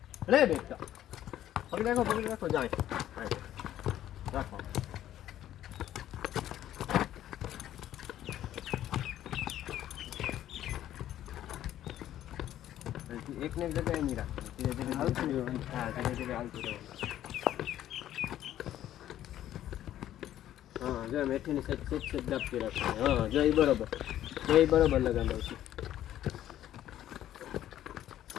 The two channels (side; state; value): right; quieter; 12.3 dB